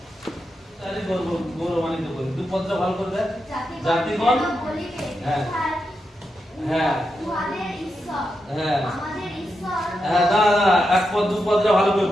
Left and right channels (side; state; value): both; normal; correlation 0.86